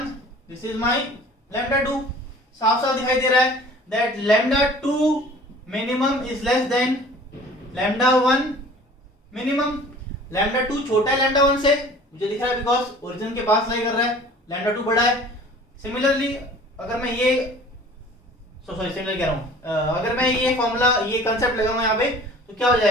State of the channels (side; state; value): both; normal; correlation 0.47